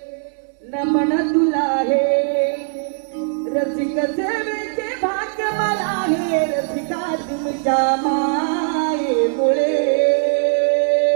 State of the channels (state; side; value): silent; left; 66 dB below the other